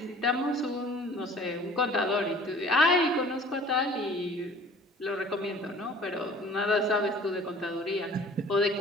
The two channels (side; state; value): both; normal; correlation 0.49